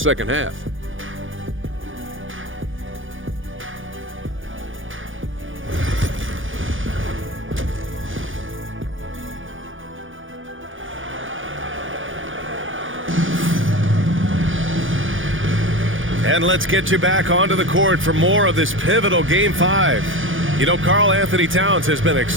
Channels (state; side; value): late; left; 0.58 ms